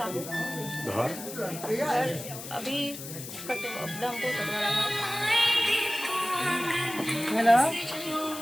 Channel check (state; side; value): noise; left; hiss, 10 dB below the sound